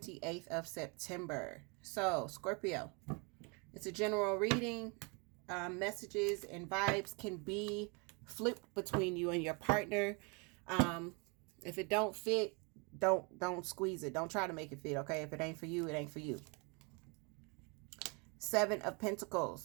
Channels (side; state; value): left; quieter; 32.1 dB